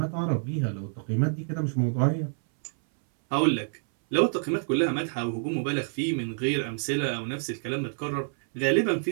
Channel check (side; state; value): left; silent; 60 dB below the other